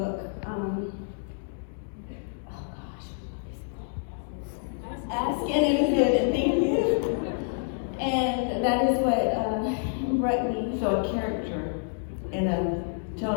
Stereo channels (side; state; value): right; silent; digital silence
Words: Ask and it is given. Thank you. And that is what brought me. So a character in a